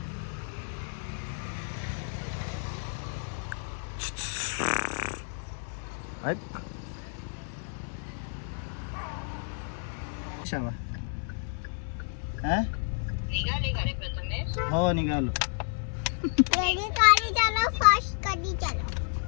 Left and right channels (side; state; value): right; silent; digital silence